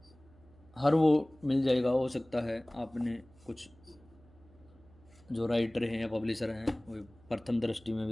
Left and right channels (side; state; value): right; noise; hum, 26 dB below the sound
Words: हर वो मिल जाएगा, हो सकता है आपने कुछ जो राइटर हैं या पब्लिशर हैं वो प्रथम दृष्टि में